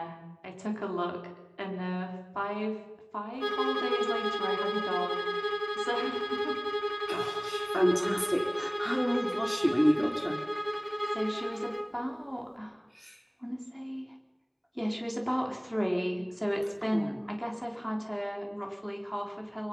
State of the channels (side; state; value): both; identical; correlation 1.00